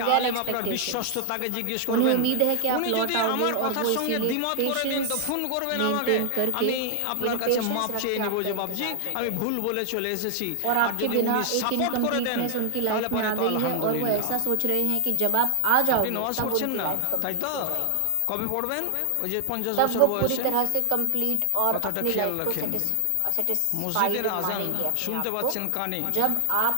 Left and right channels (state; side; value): different; both; correlation 0.00